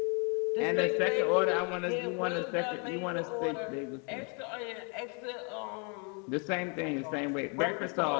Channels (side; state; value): right; quieter; 36.2 dB